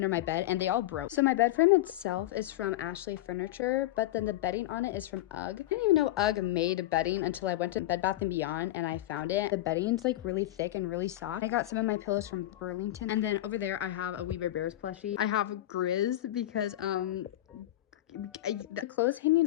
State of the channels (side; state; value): right; quieter; 15.1 dB